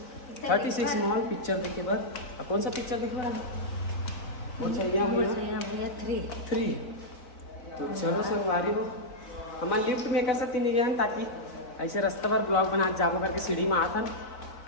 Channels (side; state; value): right; late; 4.1 ms